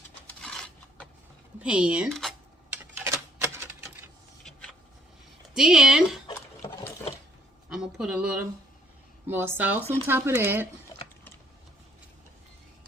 pan. Then I'm gonna put a little more sauce on top of that.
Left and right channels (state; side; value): normal; both; correlation 0.65